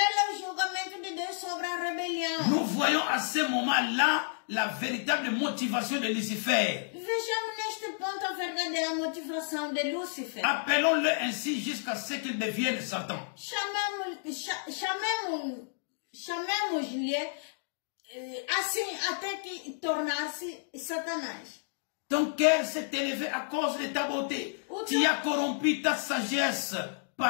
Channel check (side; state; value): right; silent; digital silence